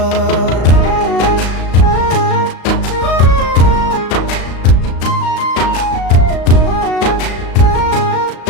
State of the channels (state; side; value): late; right; 35 ms